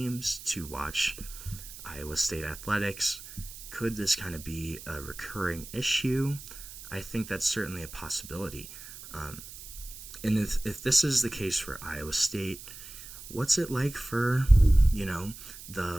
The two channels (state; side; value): noise; right; hiss, 14 dB below the sound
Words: to watch Iowa State athletics? Could this kind of be a recurring issue? I think that's certainly a possibility. And if this is the case for Iowa State, what's it like for,